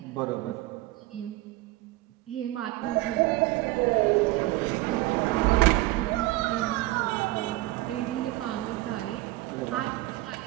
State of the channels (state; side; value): quieter; left; 18.4 dB